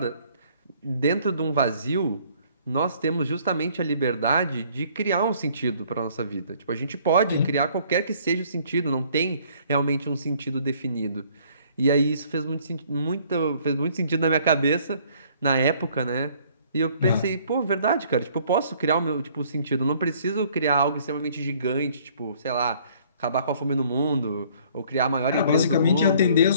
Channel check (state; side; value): inverted; both; correlation -0.59